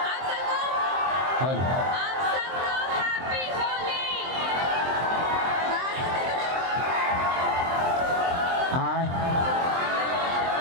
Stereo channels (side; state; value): left; late; 23 ms